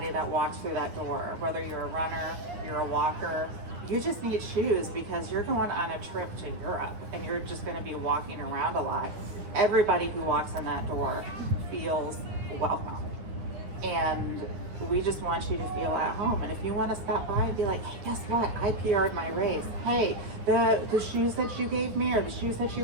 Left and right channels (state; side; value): late; left; 9.3 ms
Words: that walks through that door, whether you're a runner, you're a walker, you just need shoes because you're going on a trip to Europe and you're just going to be walking around a lot. Everybody who walks in that door feels welcome. And we just want you to feel at home. And if you want to stop by and be like, hey, guess what? I PR'd my race. Hey, the shoes that you gave me or the shoes that